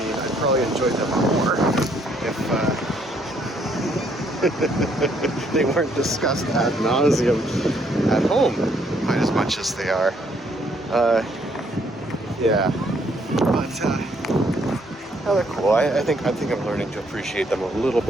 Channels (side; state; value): both; normal; correlation 0.68